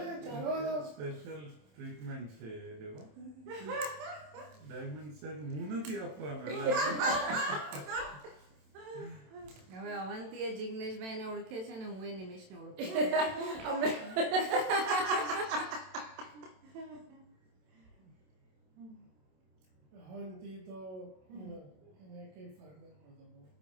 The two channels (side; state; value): left; late; 27 ms